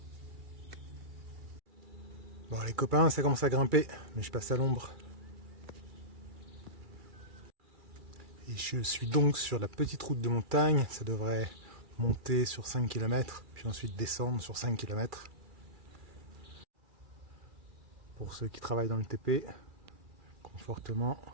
Bon, les copains, ça commence à grimper, mais je passe à l'ombre. Et je suis donc sur la petite route de montagne. Ça devrait monter sur 5 km, puis ensuite descendre sur 5 km. Pour ceux qui travaillent dans le TP, confortement.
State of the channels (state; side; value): late; left; 2.3 ms